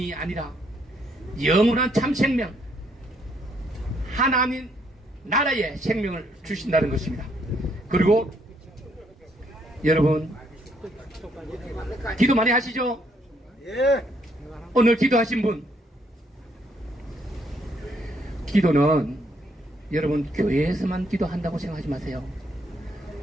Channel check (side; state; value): both; normal; correlation 0.70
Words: 아니라 영원한 참 생명 하나님 나라의 생명을 주신다는 것입니다. 그리고 여러분 기도 많이 하시죠? 오늘 기도하신 분, 기도는 여러분 교회에서만 기도한다고 생각하지 마세요.